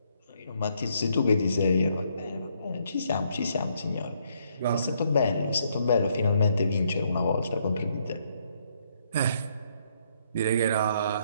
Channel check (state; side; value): inverted; both; correlation -0.72